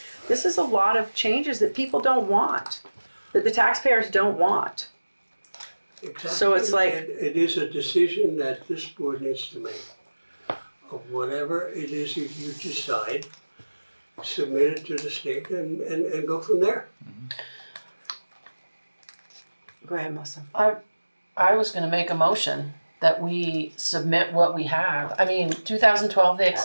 this is a lot of changes that people don't want, that the taxpayers don't want. Exactly. So it's like, it is a decision that this board needs to make. Of whatever it is you decide, submit it to the state and go from there. go ahead, Melissa. I was gonna make a motion that we submit what we have. I mean, 2012, they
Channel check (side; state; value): both; inverted; correlation -1.00